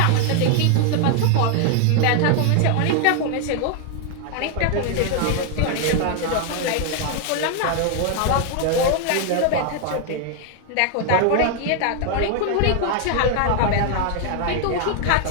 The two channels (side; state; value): both; different; correlation 0.00